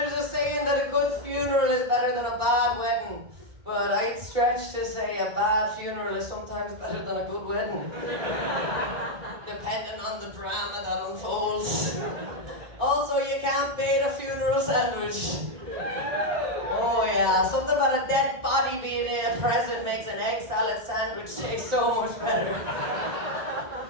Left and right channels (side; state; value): left; late; 1.9 ms